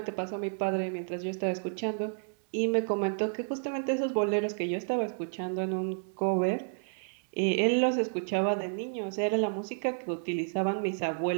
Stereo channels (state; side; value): silent; left; 57 dB below the other